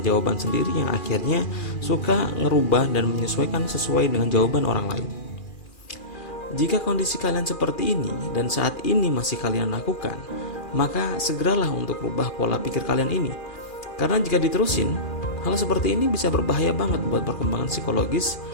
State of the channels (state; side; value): late; right; 2.4 ms